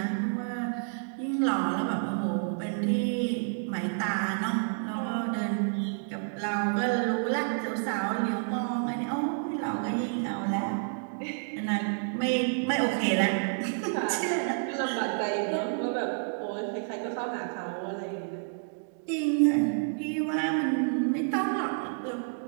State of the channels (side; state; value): left; silent; digital silence